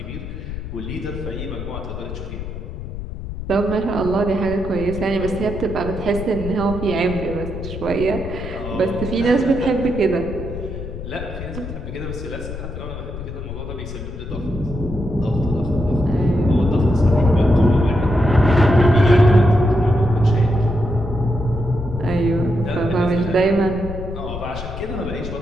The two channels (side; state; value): left; noise; rumble, 8 dB below the sound